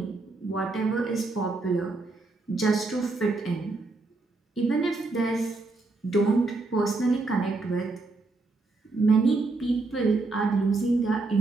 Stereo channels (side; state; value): left; quieter; 3.4 dB